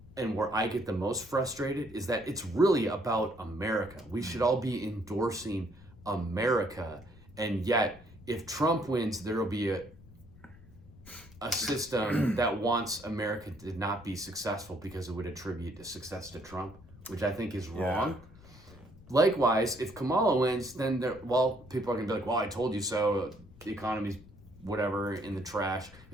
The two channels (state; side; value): noise; left; rumble, 21 dB below the sound